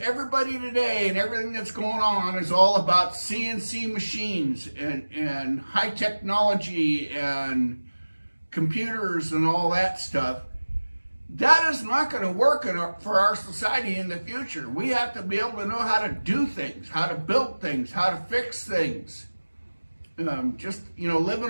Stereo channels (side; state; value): both; inverted; correlation -1.00